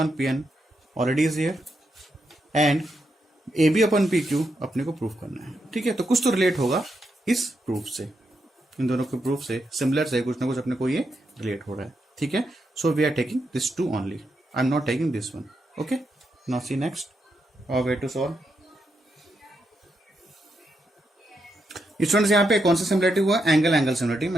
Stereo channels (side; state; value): both; normal; correlation 0.83